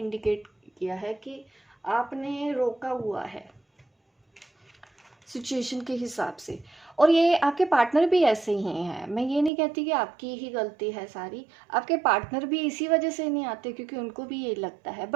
किया है कि आपने रोका हुआ है सिचुएशन के हिसाब से, और ये आपके पार्टनर भी ऐसे ही हैं। मैं ये नहीं कहती कि आपकी ही गलती है सारी, आपके पार्टनर भी इसी वजह से नहीं आते क्योंकि उनको भी ये लगता है।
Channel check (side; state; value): left; drops out; at 9.5 s